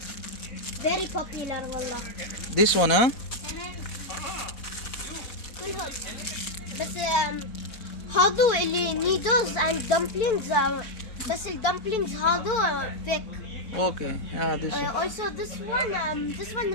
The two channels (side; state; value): right; late; 4.5 ms